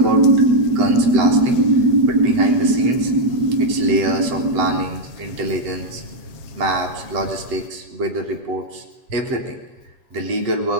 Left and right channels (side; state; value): left; late; 8.0 ms